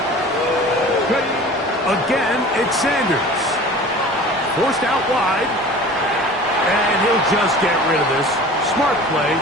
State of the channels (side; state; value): both; normal; correlation 0.41